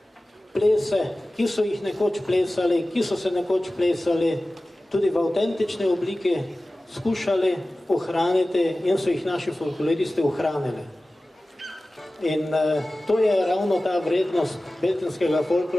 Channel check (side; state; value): both; normal; correlation 0.96